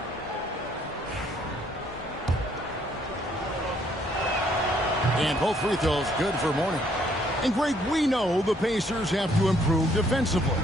And both free throws good for Mourning. And Greg, we know the Pacers have to improve defensively,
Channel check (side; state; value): both; normal; correlation 0.66